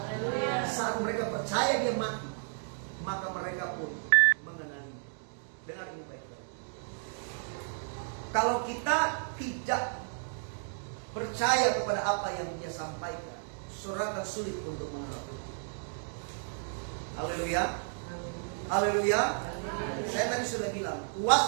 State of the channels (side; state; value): left; silent; digital silence